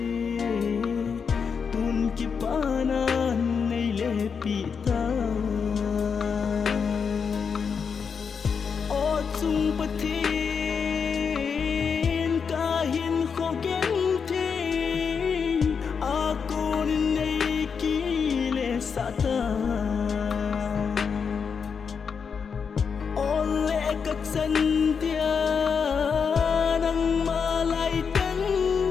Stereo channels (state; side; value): quieter; right; 6.1 dB